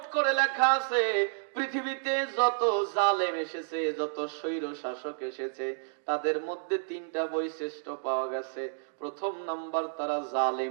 করে লেখা আছে, পৃথিবীতে যত জালেম এসেছে, যত স্বৈর শাসক এসেছে, তাদের মধ্যে 3টা বৈশিষ্ট্য পাওয়া গেছে। প্রথম নাম্বার, তারা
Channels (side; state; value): left; silent; digital silence